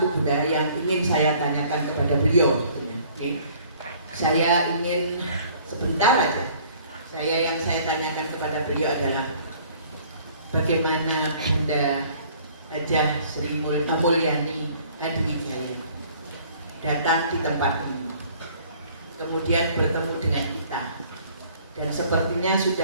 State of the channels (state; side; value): inverted; both; correlation -0.55